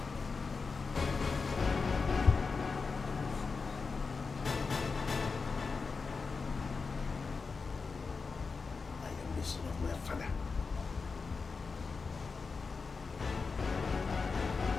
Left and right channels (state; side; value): quieter; right; 4.6 dB